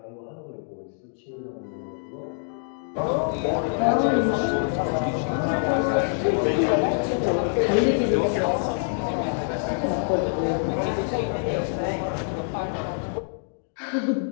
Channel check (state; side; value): silent; right; 60 dB below the other